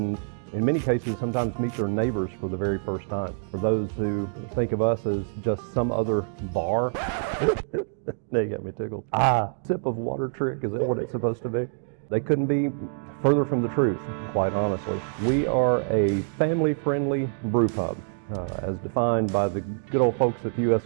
in many cases sometimes meet their neighbors for the very first time. For those who think of us as just some other bar, now you got me tickled. Sip of water trick, is that what it's supposed to be? They couldn't be further from the truth, quite honestly. We are a family-friendly brew pub, as defined by the good old folks at the U.S.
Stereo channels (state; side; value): silent; left; digital silence